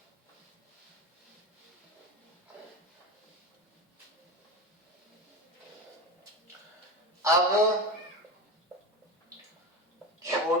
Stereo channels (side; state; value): both; normal; correlation 0.23